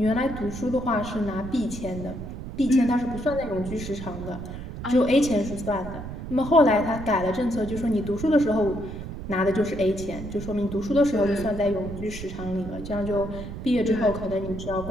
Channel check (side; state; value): right; noise; rumble, 9 dB below the sound